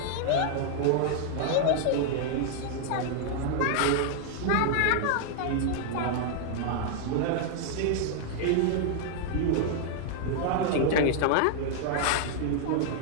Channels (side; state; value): both; different; correlation -0.01